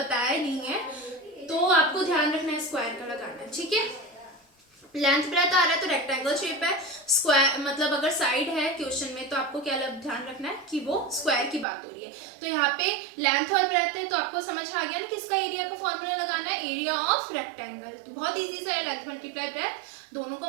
नहीं है, तो आपको ध्यान रखना है स्क्वायर का लगाना है। ठीक है, लेंथ ब्रेथ आ रहा है तो रेक्टेंगल शेप है, स्क्वायर मतलब अगर साइड है क्वेश्चन में तो आपको क्या ध्यान रखना है कि वो स्क्वायर की बात हो रही है। तो यहाँ पे लेंथ और ब्रेथ है तो आपको समझ आ गया ना किसका एरिया का फॉर्मूला लगाना है, एरिया ऑफ रेक्टेंगल। तो बहुत इजी सा है, लेंथ मल्टीप्लाई ब्रेथ दोनों को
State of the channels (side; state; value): left; drops out; at 11.7 s